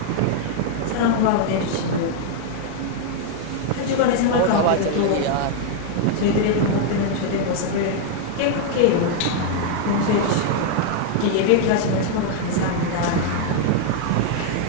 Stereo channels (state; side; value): different; both; correlation 0.00